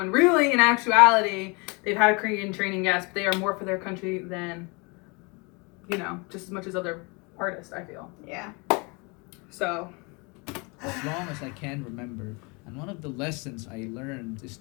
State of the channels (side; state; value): right; quieter; 29.8 dB